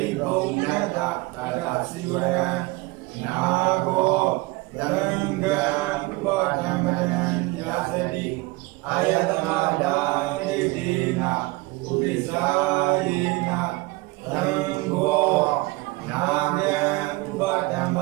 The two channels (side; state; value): left; quieter; 22.8 dB